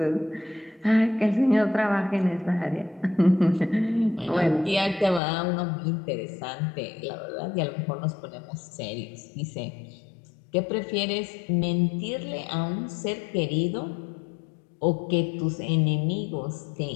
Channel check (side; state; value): right; drops out; at 5.2 s